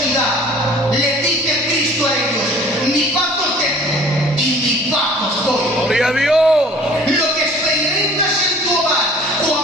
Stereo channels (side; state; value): both; normal; correlation 0.49